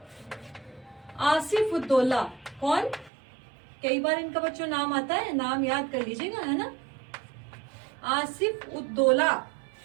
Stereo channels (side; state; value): left; drops out; at 3.1 s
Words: आसिफ उद्दौला, कौन, कई बार इनका बच्चों नाम आता है, नाम याद कर लीजिएगा, है ना। आसिफ उद्दौला